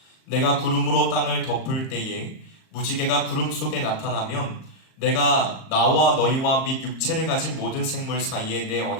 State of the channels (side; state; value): right; late; 38 ms